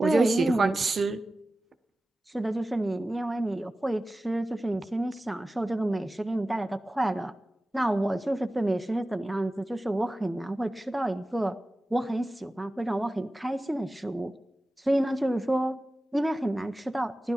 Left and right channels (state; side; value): normal; both; correlation 0.96